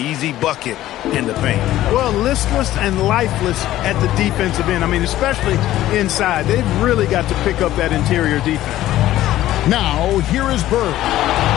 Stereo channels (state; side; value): quieter; right; 14.3 dB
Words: bucket in the paint. Well, listless and lifeless at the defensive end. I mean, especially inside. They've really got to pick up that interior defense. Now, here is Bird.